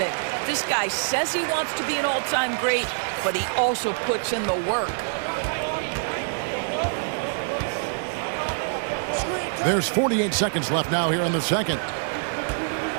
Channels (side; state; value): left; silent; digital silence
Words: This guy says he wants to be an all-time great, but he also puts in the work. There's 48 seconds left now here in the second.